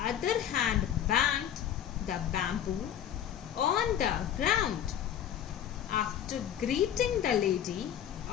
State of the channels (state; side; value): quieter; right; 10.1 dB